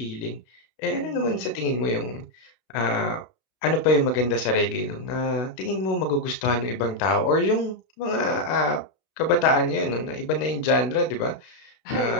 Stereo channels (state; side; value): late; right; 32 ms